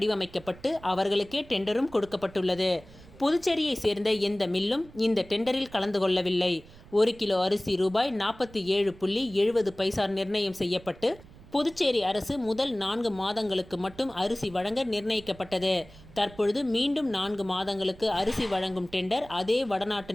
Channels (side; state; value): right; noise; rumble, 21 dB below the sound